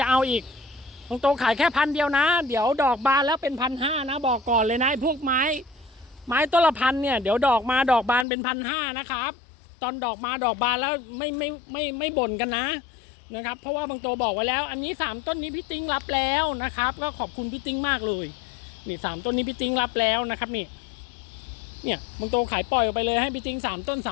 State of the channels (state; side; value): drops out; right; at 8.2 s